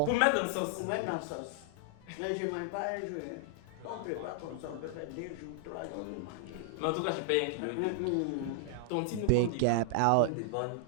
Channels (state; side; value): different; both; correlation 0.00